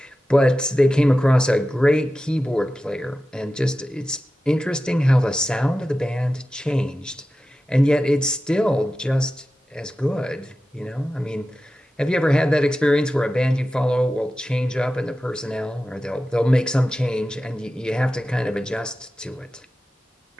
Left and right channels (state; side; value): normal; both; correlation 0.93